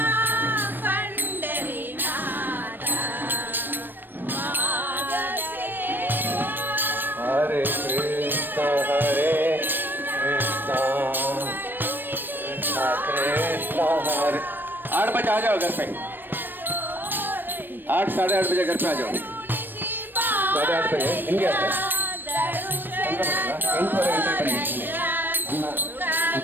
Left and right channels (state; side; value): late; left; 0.094 ms